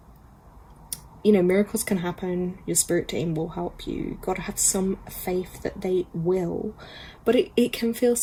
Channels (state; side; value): identical; both; correlation 1.00